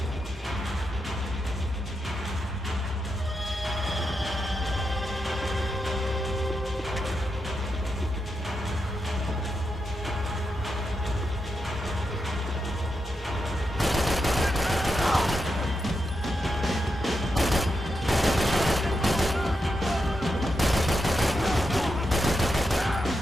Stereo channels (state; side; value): normal; both; correlation 0.86